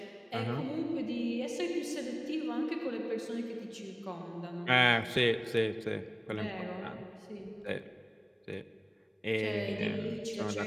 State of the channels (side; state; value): both; identical; correlation 1.00